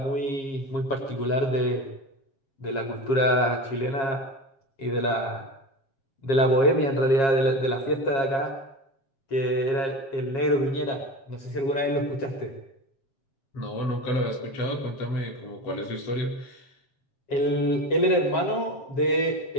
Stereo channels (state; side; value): late; right; 7.4 ms